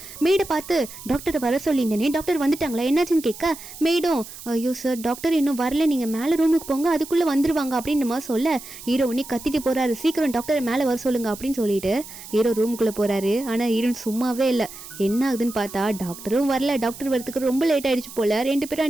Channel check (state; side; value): noise; right; hiss, 15 dB below the sound